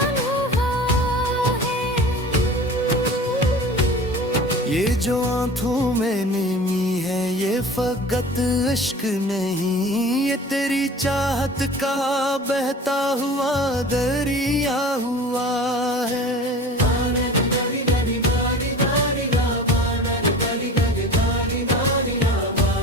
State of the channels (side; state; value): both; normal; correlation 0.39